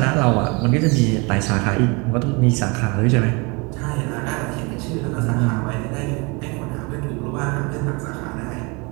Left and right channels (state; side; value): quieter; left; 28.7 dB